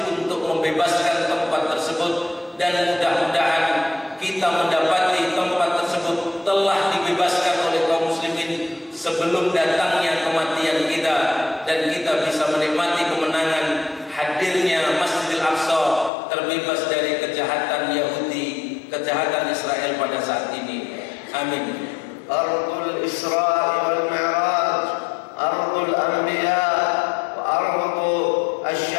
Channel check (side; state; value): right; drops out; at 16.1 s